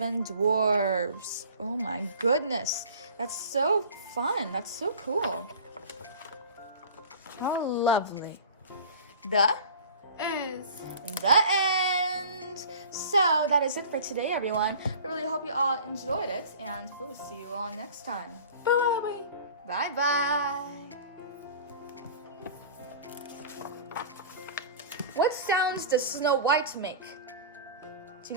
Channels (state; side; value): inverted; both; correlation -0.41